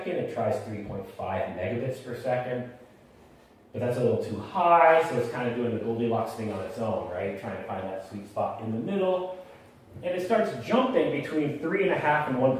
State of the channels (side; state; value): both; identical; correlation 1.00